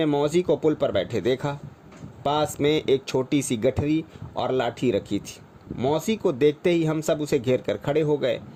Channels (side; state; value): both; identical; correlation 1.00